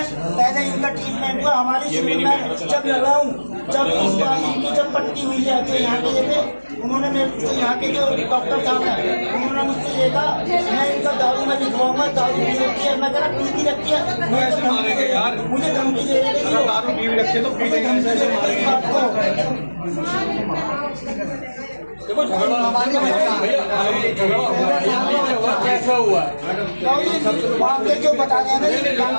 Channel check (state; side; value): inverted; both; correlation -1.00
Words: पहले इनका ट्रीटमेंट हुआ। हमारी शुरू में जब लगा हूँ, जब इस बार इनकी जब पट्टी हुई है तो यहाँ के जगह उन्होंने मेरे यहाँ के जो डॉक्टर साहब हैं उन्होंने मुझसे ये कहा मैं इनका दारू में लिखवाऊंगा, दारू पी रखी है। मैं कह रहा पी भी रखी है, मुझे धमकी दे रही है। दारू पी रखी तो पी देंगे, ऐसे मारेंगे आपको। देखो झगड़ा कैसा हुआ वहाँ पे जो बता रहे हैं ना,